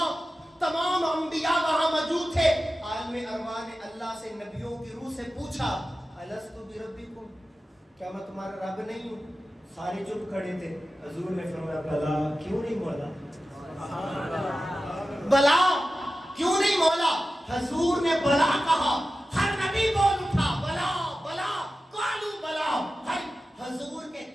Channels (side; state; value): both; normal; correlation 0.94